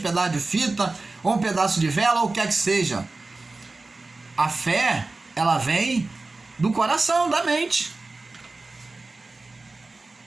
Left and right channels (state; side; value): quieter; left; 3.4 dB